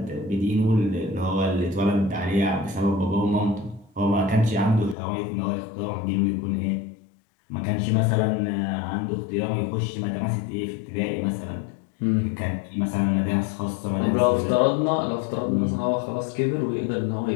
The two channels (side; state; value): right; drops out; at 5.0 s